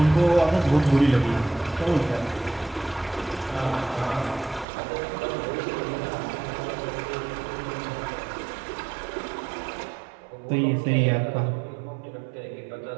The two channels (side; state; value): left; drops out; at 4.7 s